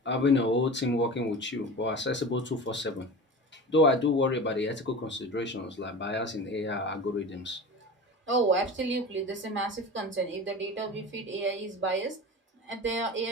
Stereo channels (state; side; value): normal; both; correlation 0.33